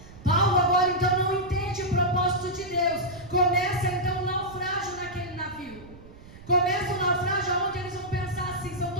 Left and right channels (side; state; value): right; noise; rumble, 19 dB below the sound